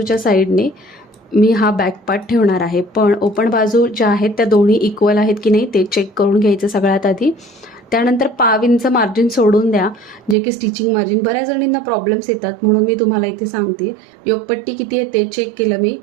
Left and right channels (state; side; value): drops out; left; at 10.4 s